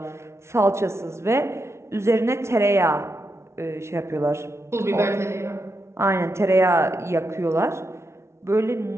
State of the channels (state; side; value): late; left; 0.13 ms